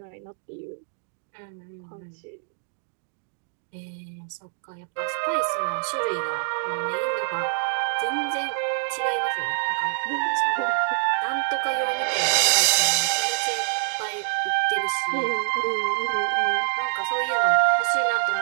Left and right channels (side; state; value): left; silent; digital silence